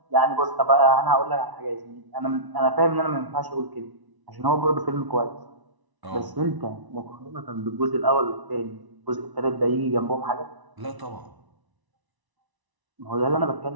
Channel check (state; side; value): late; left; 1.0 ms